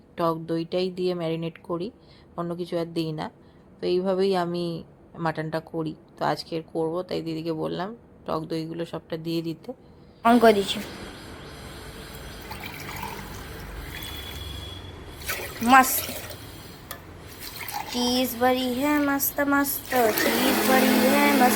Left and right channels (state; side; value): identical; both; correlation 1.00